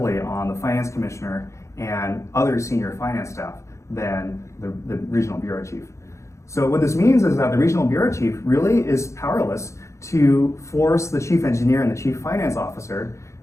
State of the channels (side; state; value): right; late; 0.14 ms